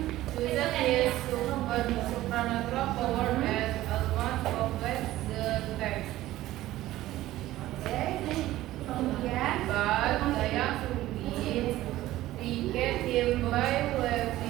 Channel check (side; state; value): left; quieter; 15.5 dB